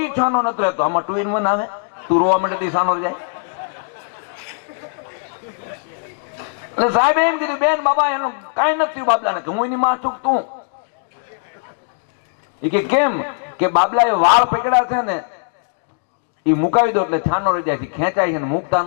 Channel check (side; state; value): right; silent; digital silence